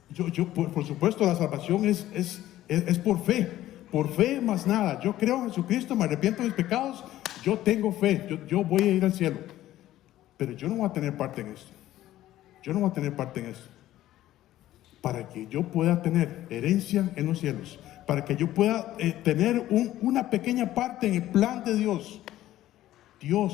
Por supuesto, la salvación es por fe. por fe más nada. Yo creo en Jesucristo, me arrepiento de mis pecados, yo tengo fe, yo voy a ir al cielo. Pero yo no voy a tener parte en esto. Yo no voy a tener parte en esto. Para que yo pueda tener herencia en los cielos, para que yo pueda tener una pequeña parte en el plan de Dios,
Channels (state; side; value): quieter; right; 14.1 dB